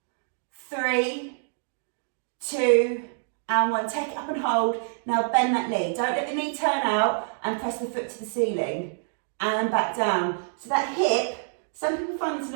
3, 2, and 1. Take it up and hold. Now bend that knee. Don't let the knee turn out and press the foot to the ceiling. And back down. So that hip, some people find this a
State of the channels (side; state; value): left; silent; digital silence